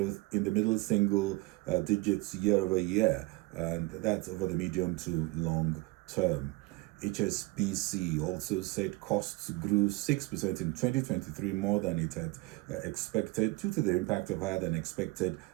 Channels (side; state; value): left; quieter; 22.7 dB